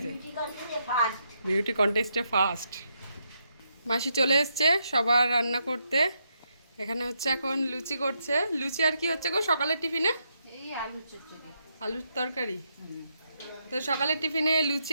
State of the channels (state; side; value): inverted; both; correlation -0.80